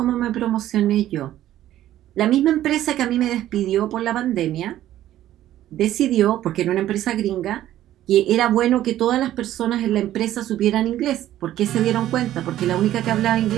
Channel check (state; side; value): quieter; left; 13.1 dB